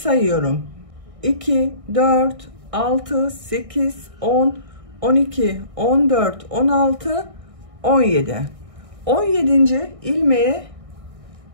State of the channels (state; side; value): late; left; 1.6 ms